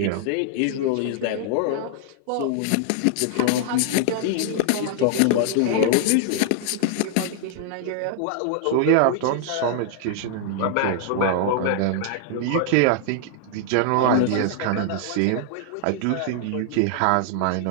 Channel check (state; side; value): different; both; correlation 0.00